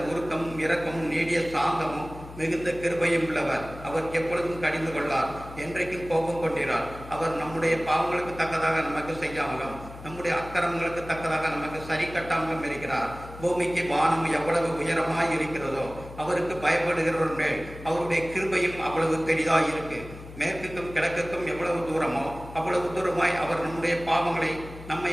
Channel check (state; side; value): noise; left; hum, 15 dB below the sound